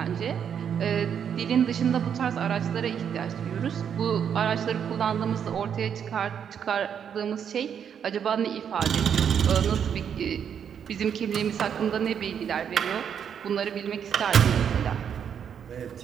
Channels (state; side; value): quieter; left; 8.1 dB